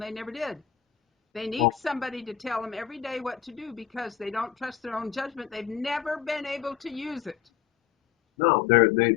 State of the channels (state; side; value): quieter; right; 9.2 dB